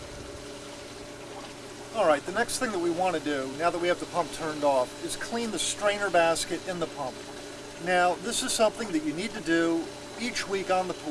Alright, the next thing that we want to do, now that we have the pump turned off, is clean the strainer basket in the pump. Now, this is something that you need to do each week on the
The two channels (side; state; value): both; identical; correlation 1.00